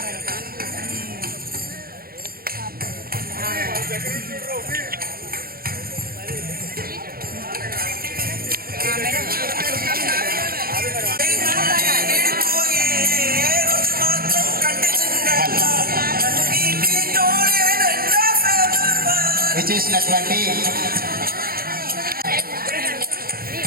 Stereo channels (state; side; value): late; left; 0.43 ms